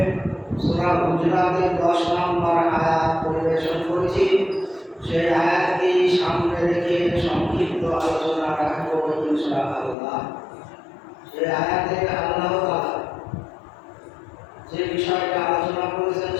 সূরা হুজুরাতের 10 নম্বর আয়াত পরিবেশন করেছি। সেই আয়াতটি সামনে রেখে সংক্ষিপ্ত আলোচনা রাখবো ইনশাআল্লাহ। সেই আয়াতে আল্লাহ তাআলা যে বিষয়টা আলোচনা করেছেন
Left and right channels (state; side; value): drops out; right; at 10.0 s